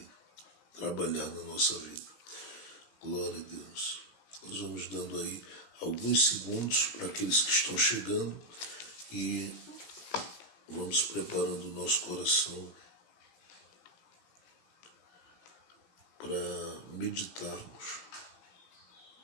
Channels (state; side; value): late; right; 17 ms